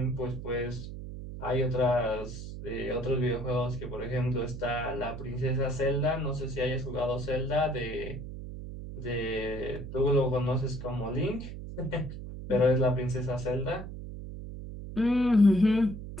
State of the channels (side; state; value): right; noise; hum, 9 dB below the sound